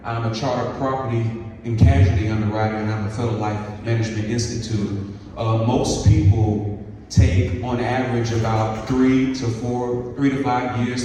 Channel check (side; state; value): both; identical; correlation 1.00